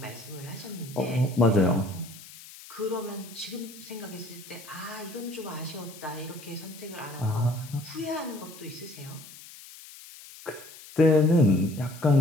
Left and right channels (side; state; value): left; noise; hiss, 17 dB below the sound